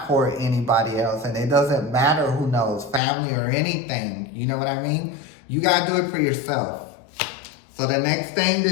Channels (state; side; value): drops out; right; at 3.0 s